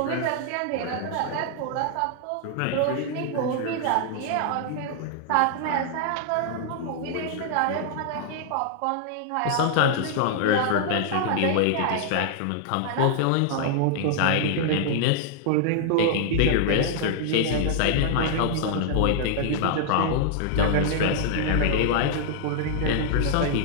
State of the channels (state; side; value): different; both; correlation -0.01